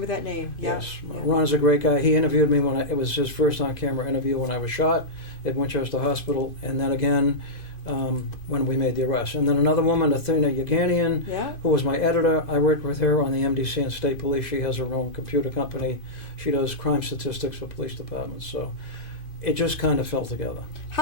that name. Yeah. Yes. Yeah. Ron's a great guy. He interviewed me it was his first on-camera interview when I was shot at Winchester Hospital, and then again when we made the arrest. And then another woman, Athena Yeganian, who was my editor. I worked with her on the MDC and State Police. She has her own computer company. She does crime statistics for police departments. So it just kind of fell together.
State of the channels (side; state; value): right; late; 2.5 ms